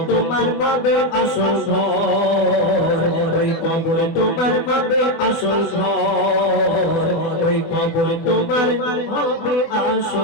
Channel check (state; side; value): late; right; 24 ms